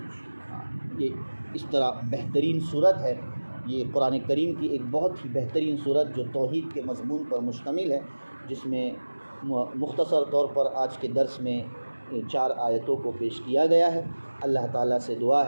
یہ اس طرح بہترین صورت ہے، یہ قرآن کریم کی ایک بہت ہی بہترین صورت جو توحید کے مضمون پر مشتمل ہے، جس میں مختصر طور پر آج کے درس میں 4 آیتوں کو پیش کیا گیا ہے۔ اللہ تعالیٰ سے دعا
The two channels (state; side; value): inverted; both; correlation -1.00